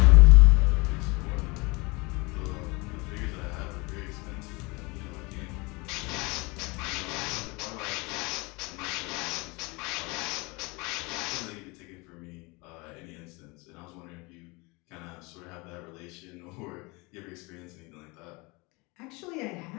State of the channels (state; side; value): quieter; right; 26.4 dB